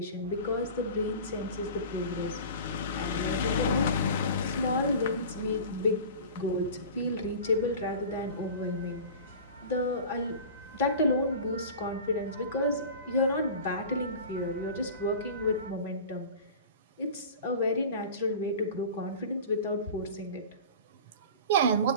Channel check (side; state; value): both; inverted; correlation -0.36